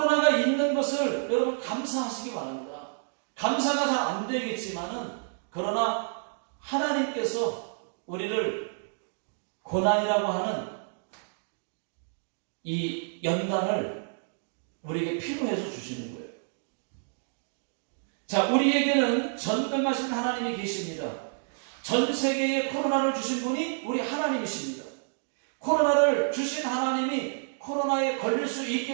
있는 것을 여러분 감사하시기 바랍니다. 감사가 잘 안 되겠지만은, 그러나 하나님께서 우리를 고난이라고 하는 이 연단을 우리에게 필요해서 주시는 거예요. 자, 우리에게는 전능하신 하나님이 계십니다. 전 세계에 코로나를 주신 분이 우리 하나님이십니다. 코로나를 주신 하나님이 코로나에 걸릴 수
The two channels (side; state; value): left; silent; digital silence